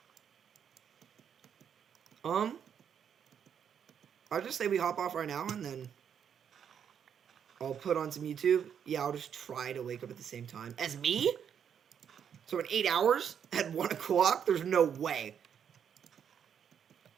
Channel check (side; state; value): left; quieter; 8.1 dB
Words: I'll just say we hop off right now, and then I'll put on some YouTube. Yeah, I'll just try to wake up at the same time as me. So in 8 hours at 1 o'clock, there's no way.